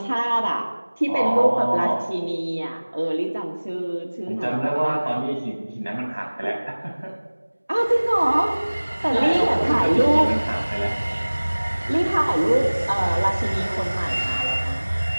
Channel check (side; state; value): both; inverted; correlation -1.00